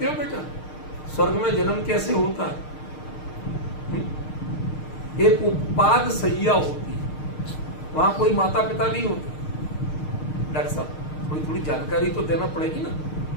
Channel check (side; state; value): right; late; 6.5 ms